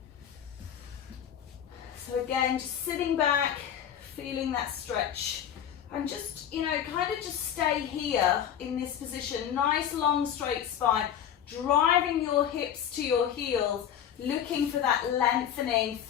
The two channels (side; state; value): right; quieter; 9.5 dB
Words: So again, just sitting back, feeling that stretch, and just, you know, kind of just stay here in this position. Nice long straight spine, driving your hips to your heels, looking for that lengthening